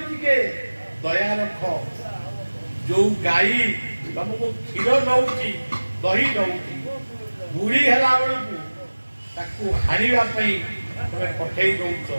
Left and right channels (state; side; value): inverted; both; correlation -1.00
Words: ଟିକେ ଦୟା ରଖ। ଯୋଉ ଗାଈ ତମକୁ କ୍ଷୀର ଦଉଛି, ଦହି ଦଉଛି, ବୁଢୀ ହେଲା ବେଳକୁ ତାକୁ ହାଣିବା ପାଇଁ ତମେ ପଠେଇ ଦଉଛ,